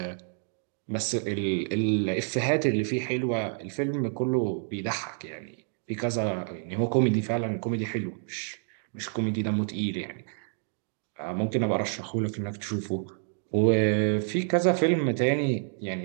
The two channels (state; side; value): silent; left; 59 dB below the other